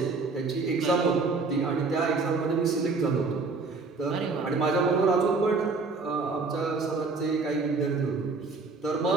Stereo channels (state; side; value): quieter; left; 4.1 dB